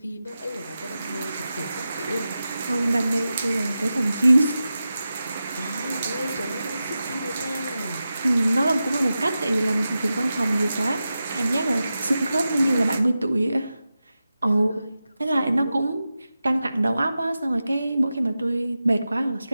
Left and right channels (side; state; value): both; inverted; correlation -0.92